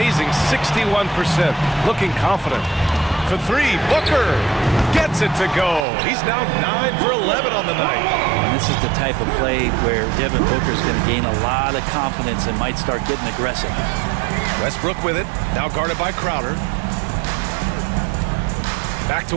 61%. Looking confident. For 3, Booker gets it to go. He's now 9 for 11 on the night. And this is the type of play where Devin Booker is going to gain a lot of confidence and might start getting aggressive. Westbrook with it. Now guarded by Crowder. Back to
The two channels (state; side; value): drops out; left; at 5.9 s